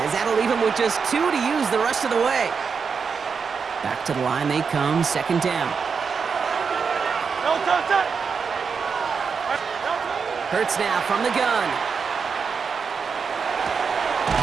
As that'll leave him with just 2 to use the rest of the way. Back to the line they come, second down. Hurts now from the gun.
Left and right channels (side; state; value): left; quieter; 5.7 dB